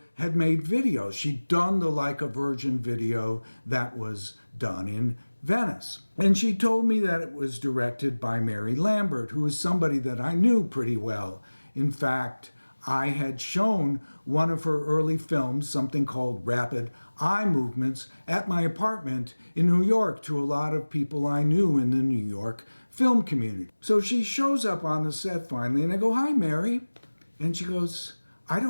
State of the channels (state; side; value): inverted; both; correlation -1.00